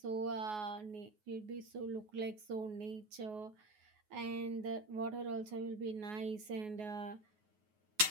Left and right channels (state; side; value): late; left; 9.4 ms